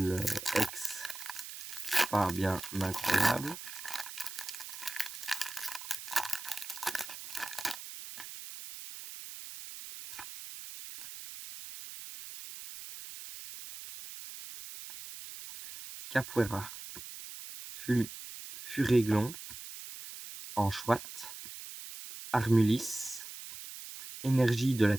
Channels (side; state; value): right; noise; hiss, 11 dB below the sound